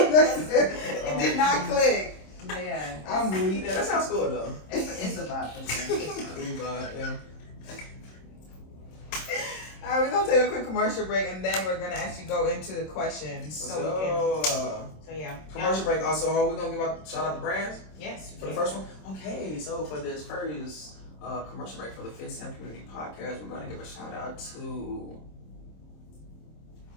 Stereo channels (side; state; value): right; late; 26 ms